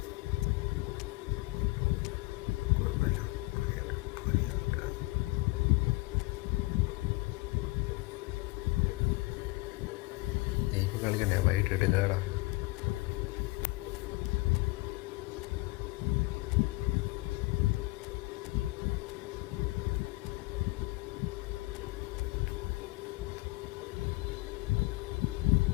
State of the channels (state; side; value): quieter; right; 23.2 dB